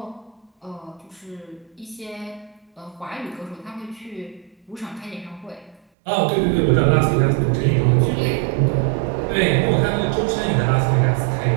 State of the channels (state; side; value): drops out; left; at 5.8 s